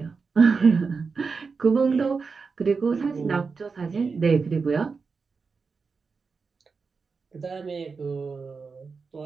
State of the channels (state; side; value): quieter; left; 4.9 dB